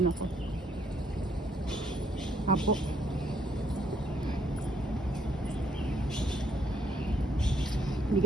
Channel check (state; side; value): normal; both; correlation 0.68